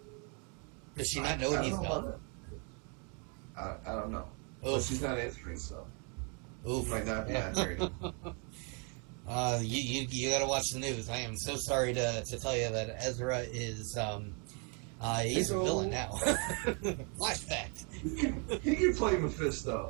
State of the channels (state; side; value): quieter; left; 37.0 dB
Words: Does she not know what I he's don't know done? about that. I don't know. But Oof. she's not answering, so Oof. she might not be Yeah. answering. You got to watch the news. I am so sorry to tell you that Ezra is he's a villain now. Flashback. He can play